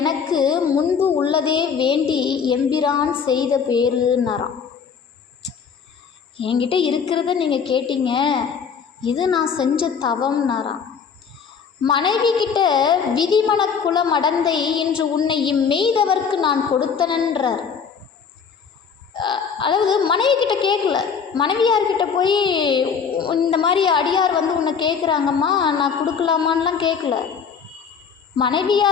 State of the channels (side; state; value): right; quieter; 6.5 dB